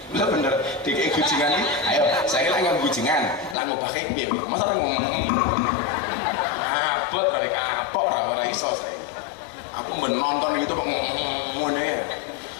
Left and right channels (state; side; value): drops out; right; at 3.6 s